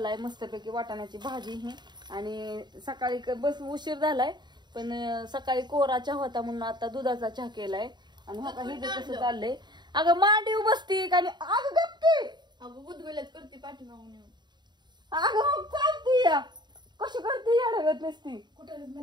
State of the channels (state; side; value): late; left; 0.21 ms